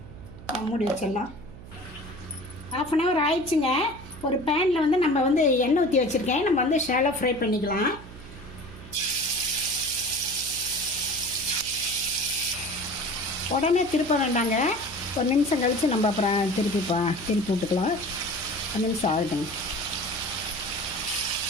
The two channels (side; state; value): right; noise; hum, 16 dB below the sound